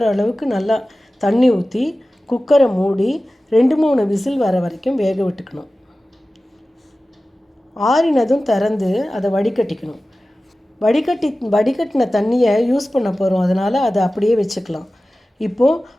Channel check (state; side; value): normal; both; correlation 0.96